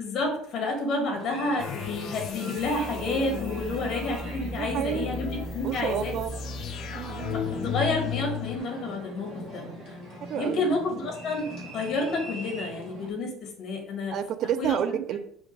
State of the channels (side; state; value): both; normal; correlation 0.48